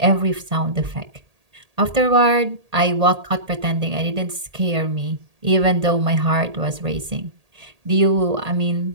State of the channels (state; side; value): late; left; 1.8 ms